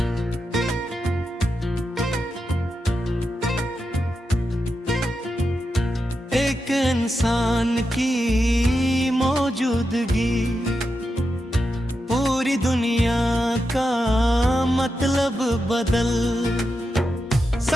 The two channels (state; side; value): normal; both; correlation 0.88